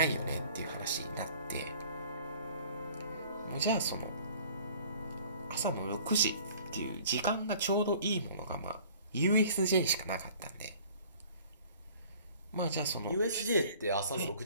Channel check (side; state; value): both; inverted; correlation -0.50